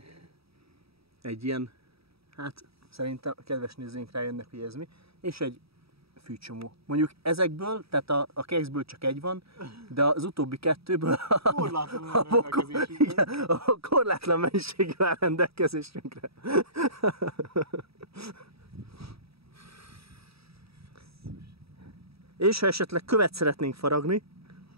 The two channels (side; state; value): left; late; 0.77 ms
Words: Egy ilyen, hát szerintem a kedves nézőink rájönnek, hogy ez mi. És egy fűcsomó. Mondjuk ezekből, tehát a kekszből csak egy van, de az utóbbi kettőből a korlátlan mennyiség áll rendelkezésünkre. És ha esetleg követ szeretnénk faragni,